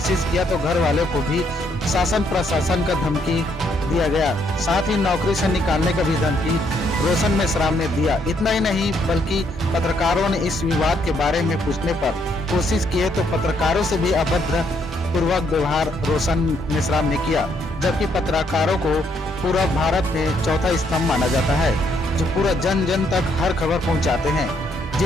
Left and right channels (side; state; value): both; normal; correlation 0.72